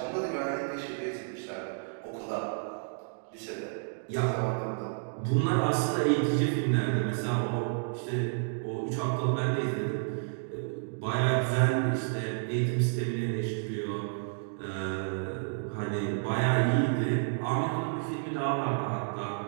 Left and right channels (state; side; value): silent; left; digital silence